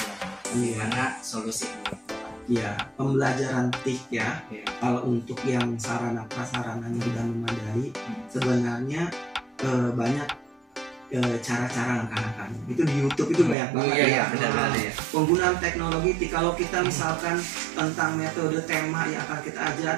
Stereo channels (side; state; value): left; drops out; at 13.6 s